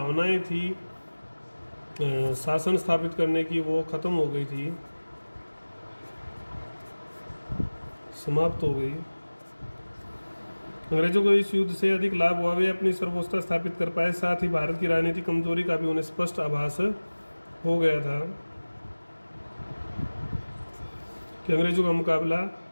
थी शासन स्थापित करने की वो खत्म हो गई थी, समाप्त हो गई। अंग्रेजों को इस युद्ध से अधिक लाभ हुआ। वे अपनी सर्वोच्चता स्थापित कर पाए। साथ ही भारत की राजनीतिक कमजोरी का भी उन्हें स्पष्ट आभास हो गया था कि अंग्रेजों का मुकाबला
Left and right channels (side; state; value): both; inverted; correlation -1.00